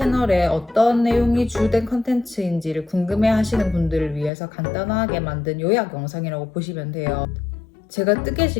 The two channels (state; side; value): drops out; right; at 4.3 s